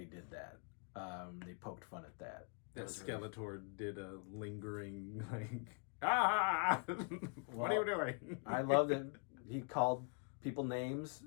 did that. They poked fun at that. That Skeletor really... did a lingering, like, what are you doing? I loved it. He called people names.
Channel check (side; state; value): right; quieter; 39.8 dB